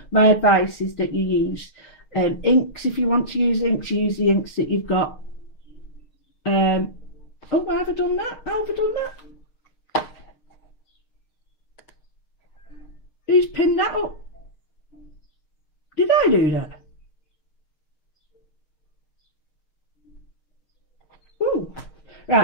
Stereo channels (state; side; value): late; right; 6.5 ms